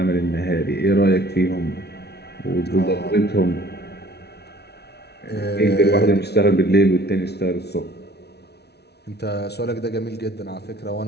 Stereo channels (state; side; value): late; right; 0.49 ms